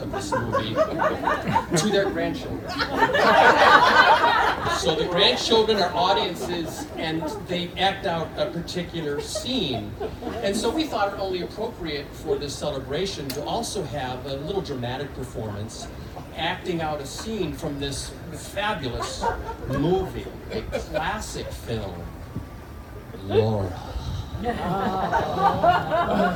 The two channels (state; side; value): identical; both; correlation 1.00